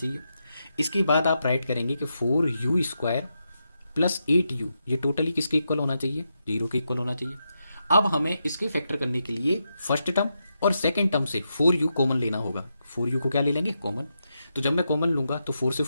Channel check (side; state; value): both; inverted; correlation -0.85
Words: इसके बाद आप राइट करेंगे कि 4u² प्लस 8u, ये टोटली किसके इक्वल होना चाहिए? 0 के इक्वल होना चाहिए। अब हमें इसके फैक्टर करने के लिए फर्स्ट टर्म और सेकेंड टर्म से 4u कॉमन लेना होगा। 4u को क्या ले लेंगे? कॉमन। तो जब मैं कॉमन लूंगा तो 4 से